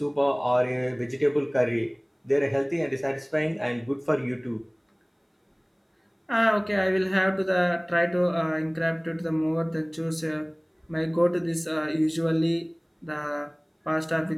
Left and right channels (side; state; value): both; identical; correlation 1.00